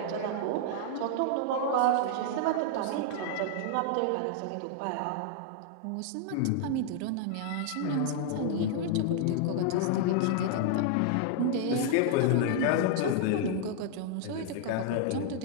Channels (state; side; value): different; both; correlation 0.00